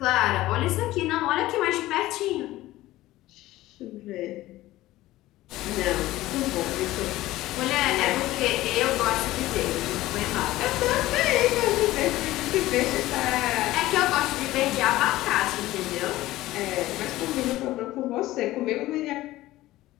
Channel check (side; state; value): right; quieter; 16.6 dB